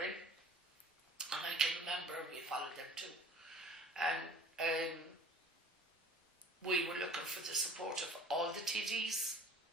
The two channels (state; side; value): normal; both; correlation 0.46